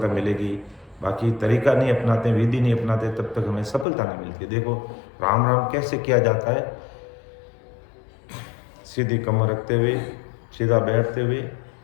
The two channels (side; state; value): right; drops out; at 3.9 s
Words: मिलेगी। बाकी तरीका नहीं अपनाते, विधि नहीं अपनाते, तब तक हमें सफलता नहीं मिलती। देखो राम राम कैसे किया जाता है, सीधी कमर रखते हुए, सीधा बैठते हुए,